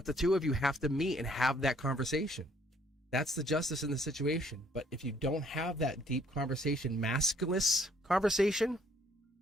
the two of you have to meet and have that conversation. That's the justice in the situation. But if you don't have that deep conversation, maskless conversation,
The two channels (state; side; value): normal; both; correlation 0.63